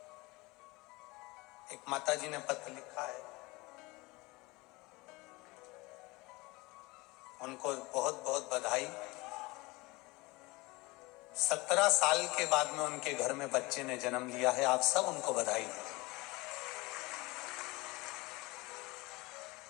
एक माता जी ने पत्र लिखा है, उनको बहुत बहुत बधाई। 17 साल के बाद में उनके घर में बच्चे ने जन्म लिया है, आप सब उनको बधाई दें।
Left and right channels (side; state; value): right; quieter; 23.2 dB